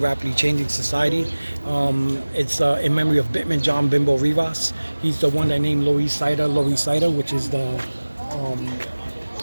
changing society. It's in memory of Bitman John Bimbo Rivas. He's the one that named Loisaida, which is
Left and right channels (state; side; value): inverted; both; correlation -1.00